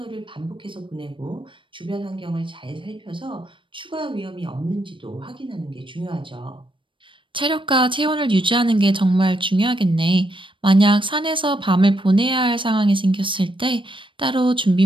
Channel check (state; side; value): late; left; 0.25 ms